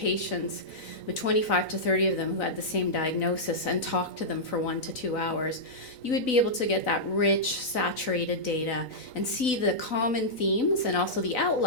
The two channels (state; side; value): late; right; 4.0 ms